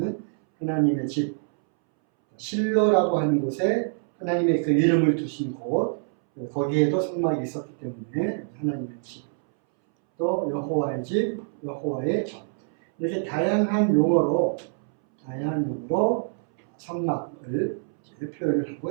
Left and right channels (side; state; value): left; silent; 61 dB below the other